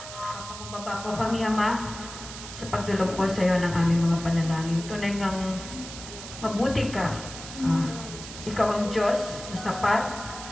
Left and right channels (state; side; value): noise; right; hiss, 11 dB below the sound